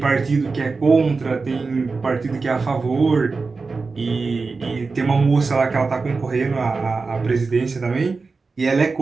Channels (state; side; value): quieter; left; 4.2 dB